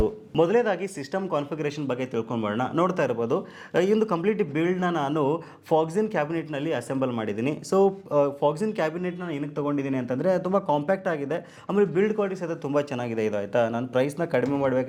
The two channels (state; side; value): identical; both; correlation 1.00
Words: ಮೊದಲೇದಾಗಿ ಸಿಸ್ಟಮ್ ಕಾನ್ಫಿಗರೇಷನ್ ಬಗ್ಗೆ ತಿಳ್ಕೊಂಡ್ಬರೋಣ. ನೋಡ್ತಾ ಇರ್ಬೋದು, ಈ ಒಂದು ಕಂಪ್ಲೀಟ್ ಬಿಲ್ಡ್ನ ನಾನು ಫಾಕ್ಸಿನ್ ಕ್ಯಾಬಿನೆಟ್ನಲ್ಲಿ ಅಸೆಂಬಲ್ ಮಾಡಿದ್ದೀನಿ. ಸೊ ಫಾಕ್ಸಿನ್ ಕ್ಯಾಬಿನೆಟ್ನ ಏನಕ್ಕೆ ತೊಗೊಂಡಿದ್ದೀನಿ ಅಂತಂದರೆ ತುಂಬ ಕಾಂಪ್ಯಾಕ್ಟ್ ಆಗಿದೆ, ಆಮೇಲೆ ಬಿಲ್ಡ್ ಕ್ವಾಲಿಟಿ ಸಹಿತ ತುಂಬ ಚೆನ್ನಾಗಿದೆ. ಇದು ಆಯಿತಾ, ನಾನು ಪ್ರೈಸ್ನ ಕಡಿಮೆ